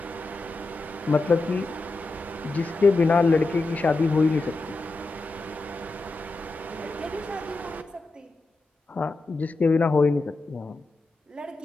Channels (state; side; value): quieter; right; 3.3 dB